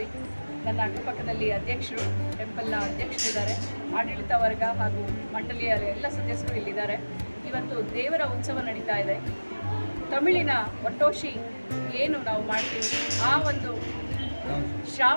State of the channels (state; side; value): inverted; both; correlation -1.00